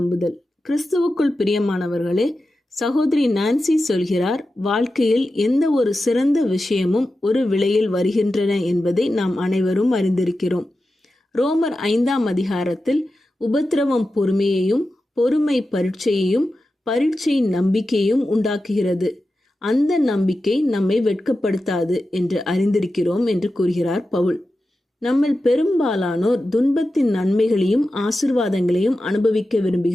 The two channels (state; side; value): normal; both; correlation 0.92